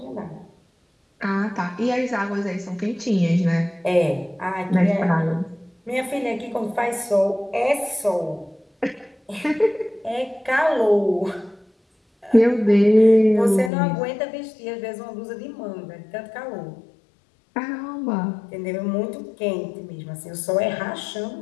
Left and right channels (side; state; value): right; drops out; at 13.7 s